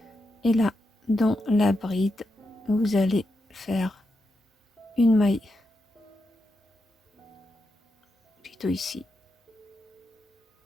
Et là, dans la bride, vous allez faire une maille, plutôt ici,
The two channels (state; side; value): normal; both; correlation 0.85